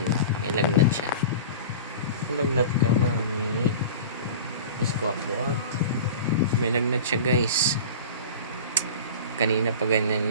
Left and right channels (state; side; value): inverted; both; correlation -0.35